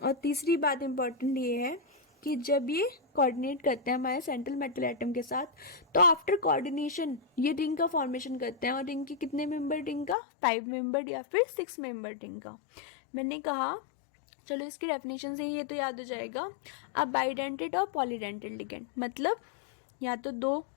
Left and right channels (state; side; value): drops out; right; at 10.2 s